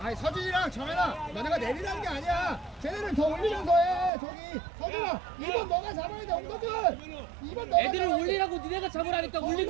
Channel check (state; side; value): drops out; left; at 4.1 s